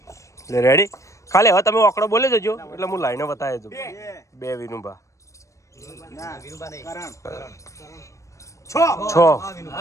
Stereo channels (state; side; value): late; right; 0.15 ms